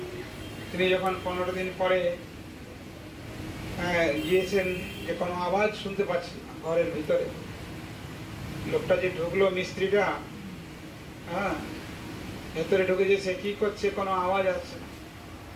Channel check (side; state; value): both; identical; correlation 1.00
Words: তিনি যখন 15 দিন পরে গিয়েছেন, যে কোনো আওয়াজ শুনতে পাচ্ছি ঘরের ভিতরে, লোকটা যে ঢুকলো মিস্ত্রিটা, হ্যাঁ, ভেতরে ঢুকে যে সে কি করছে, কোনো আওয়াজ আসছে না।